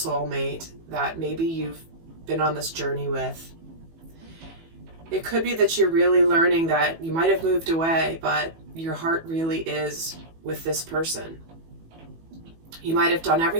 that maybe you've been on this journey with, it could be that you're really learning that you might have moved away, but your heart really is with this person. You might have done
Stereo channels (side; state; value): left; late; 18 ms